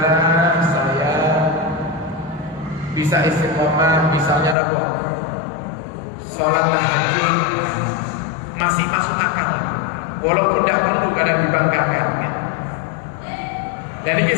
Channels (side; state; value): right; drops out; at 4.5 s